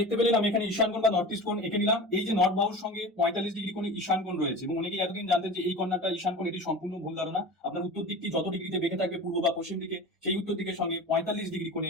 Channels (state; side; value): normal; both; correlation 0.33